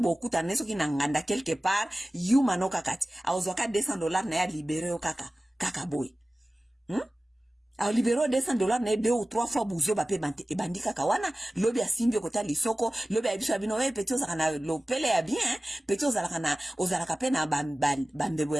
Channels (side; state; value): both; normal; correlation 0.97